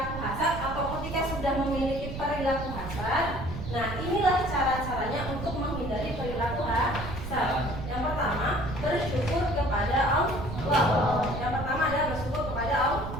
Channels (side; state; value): right; noise; rumble, 7 dB below the sound